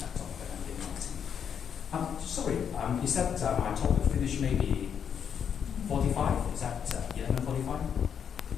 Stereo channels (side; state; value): right; quieter; 7.8 dB